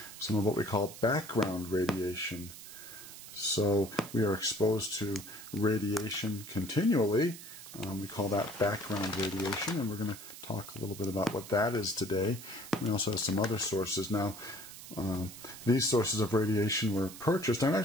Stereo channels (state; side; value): noise; right; hiss, 14 dB below the sound